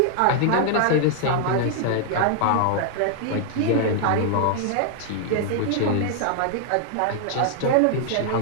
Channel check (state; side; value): different; both; correlation 0.00